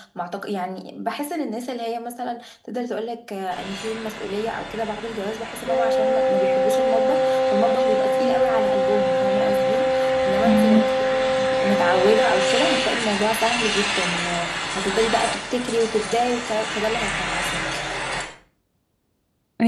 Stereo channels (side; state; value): both; identical; correlation 1.00